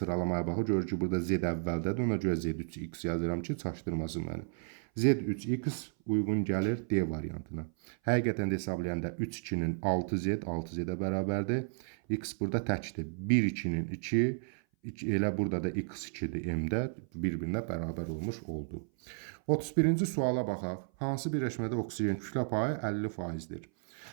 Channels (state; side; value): silent; left; 56 dB below the other